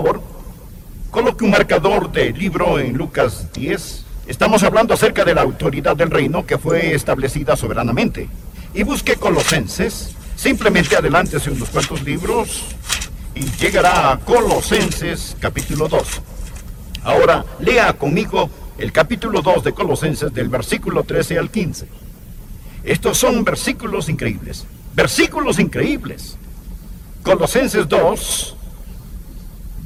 coloque un marcador de libro en Lucas 10. Estamos hablando acerca de la autoridad del reino que fue establecida soberanamente. Y busque Colosenses. Simplemente adelántese unos cuantos libros y llegará a Colosenses capítulo 2. Ahora, lea conmigo el capítulo 2 de Colosenses del versículo 13 al 15. Estos son versículos increíbles. Versículos increíbles. Colosenses 2,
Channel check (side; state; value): both; identical; correlation 1.00